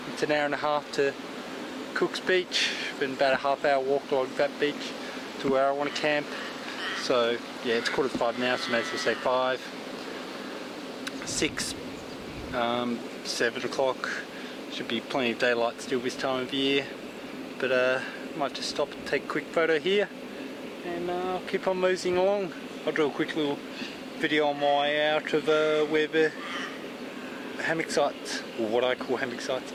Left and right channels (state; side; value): identical; both; correlation 1.00